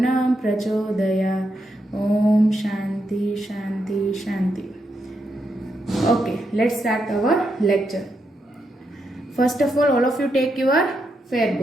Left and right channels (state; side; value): normal; both; correlation 0.82